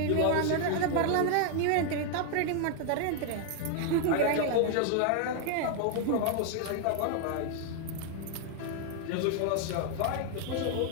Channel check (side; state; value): both; different; correlation 0.00